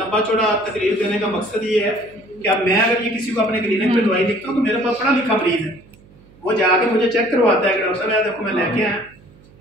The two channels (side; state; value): right; noise; hum, 26 dB below the sound